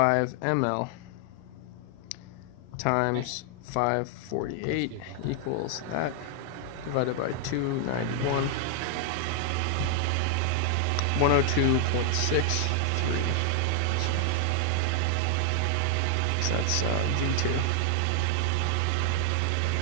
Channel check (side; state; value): both; different; correlation 0.00